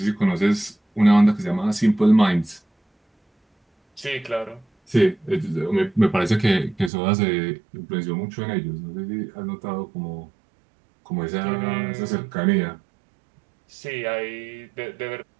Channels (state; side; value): drops out; left; at 6.9 s